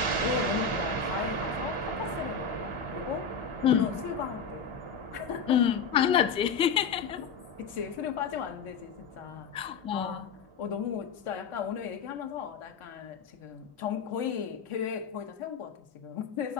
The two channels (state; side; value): quieter; right; 5.5 dB